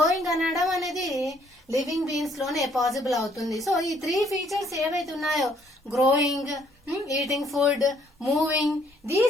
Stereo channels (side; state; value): both; normal; correlation 0.65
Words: అనడం అనేది living beings లోనే possible అవుతుంది. So ఈ 3 ఫీచర్స్ ఏవైతే ఉన్నాయో, growing, eating food, moving,